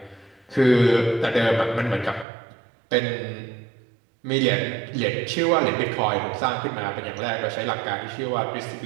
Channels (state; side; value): drops out; left; at 2.2 s